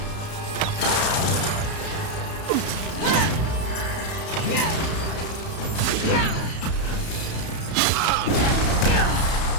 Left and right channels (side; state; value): right; late; 32 ms